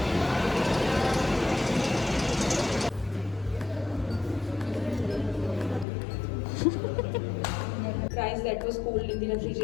that was cooled in the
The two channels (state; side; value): drops out; right; at 5.9 s